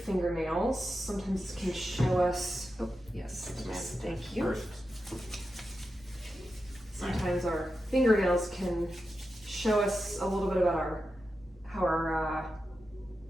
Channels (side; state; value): both; normal; correlation 0.90